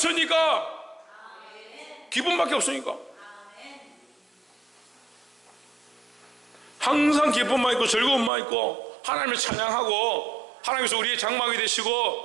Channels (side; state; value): left; drops out; at 8.3 s